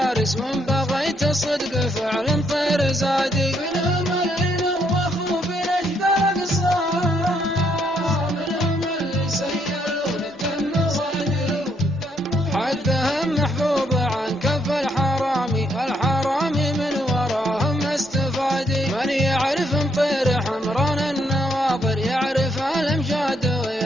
وان بغيت الصدق فعلا طير زادي. منهم اللي نوخوا بنجد الاقصى منهم اللي سيلوا للدم صادي. حدهم محبوب عن كف الحرامي الحرامي من وراهم استفادي. من يعرف مطير حمران النواظر يعرف الامجاد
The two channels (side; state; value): both; normal; correlation 0.73